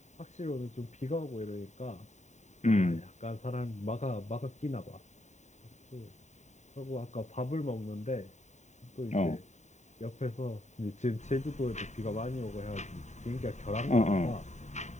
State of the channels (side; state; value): right; late; 0.34 ms